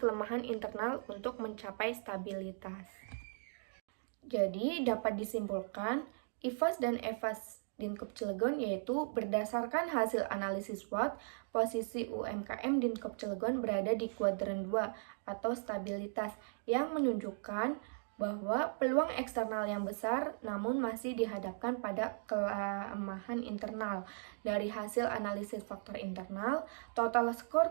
internal untuk mencapai stabilitas. Jadi, dapat disimpulkan, IFAS dan EVAS Dinkop Cilegon yaitu berdasarkan hasil analisis SWOT, posisi UMKM Dinkop Cilegon berada di kuadran 2 atau stabilitas yang menunjukkan bahwa peluang eksternal yang besar namun masih dihadapkan pada kelemahan internal. Dari hasil analisis faktor internal, total skor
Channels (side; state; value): left; silent; digital silence